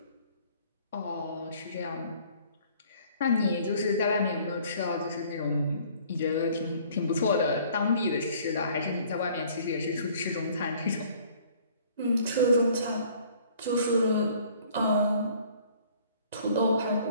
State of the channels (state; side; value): inverted; both; correlation -0.56